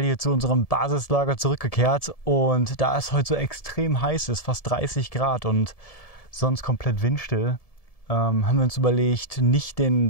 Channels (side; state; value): right; late; 1.7 ms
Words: hier zu unserem Basislager zurückgekehrt. Und da es heute so extrem heiß ist, fast 30 Grad und sonst komplett windstill, haben wir uns überlegt, nicht den